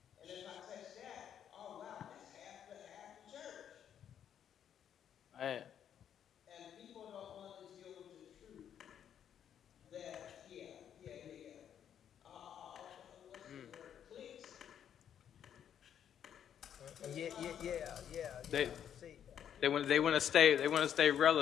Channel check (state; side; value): quieter; right; 9.2 dB